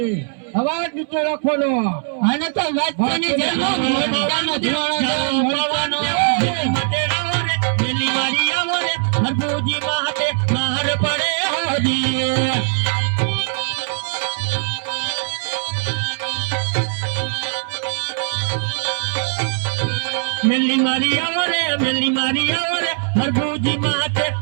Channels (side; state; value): left; silent; 63 dB below the other